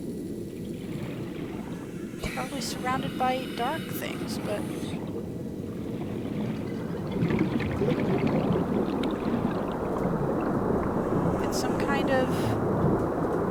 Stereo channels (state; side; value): identical; both; correlation 1.00